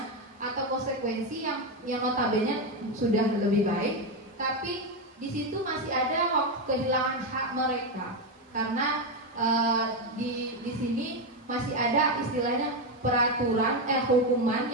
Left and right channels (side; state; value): both; normal; correlation 0.09